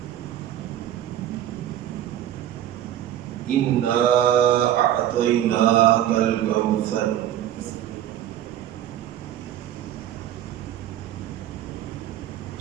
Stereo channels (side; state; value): left; quieter; 11.7 dB